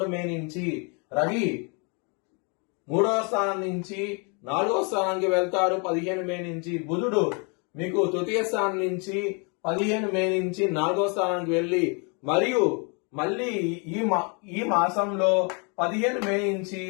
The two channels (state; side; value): quieter; right; 34.7 dB